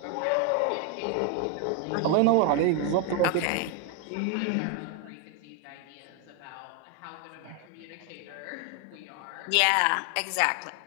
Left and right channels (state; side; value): different; both; correlation 0.01